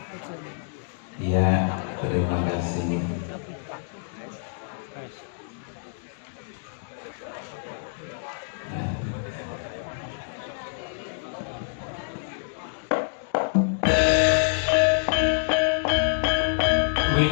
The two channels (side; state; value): right; silent; digital silence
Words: Ya, terima kasih.